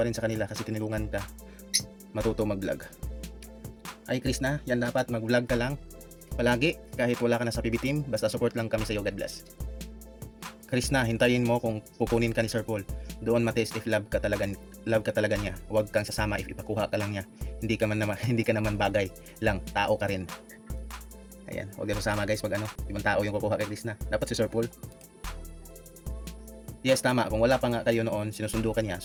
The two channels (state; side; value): identical; both; correlation 1.00